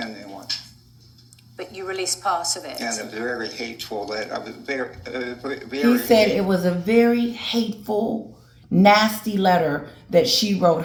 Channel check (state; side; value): identical; both; correlation 1.00